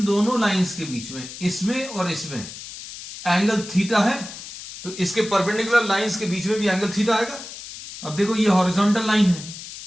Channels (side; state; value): left; noise; hiss, 12 dB below the sound